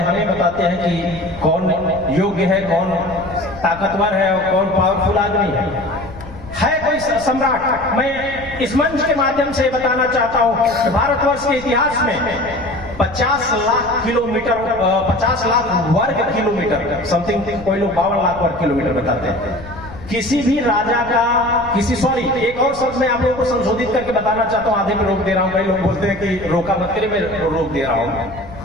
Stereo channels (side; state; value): left; noise; rumble, 16 dB below the sound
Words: बताते हैं कि कौन योग्य है, कौन ताकतवर है और कौन पावरफुल आदमी है कोई सम्राट। मैं इस मंच के माध्यम से बताना चाहता हूं कि भारतवर्ष के इतिहास में 50 लाख किलोमीटर, 50 लाख वर्ग किलोमीटर समथिंग, कोई लोग 52 लाख वर्ग किलोमीटर बताते हैं। किसी भी राजा का एक और शब्द मैं आप लोगों को संशोधित करके बताना चाहता हूं, आधे में रोक दे रहा हूं, कई लोग बोलते हैं कि रोका मत करिए, मैं रोक दे रहा हूं।